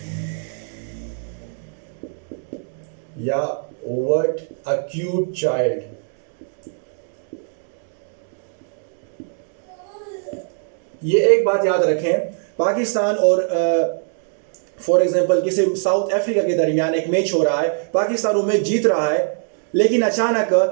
या व्हाट अ क्यूट चाइल्ड। ये एक बात याद रखें, पाकिस्तान और फॉर एग्जांपल किसी साउथ अफ्रीका के दरमियान एक मैच हो रहा है, पाकिस्तान वो मैच जीत रहा है, लेकिन अचानक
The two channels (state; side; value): silent; left; 61 dB below the other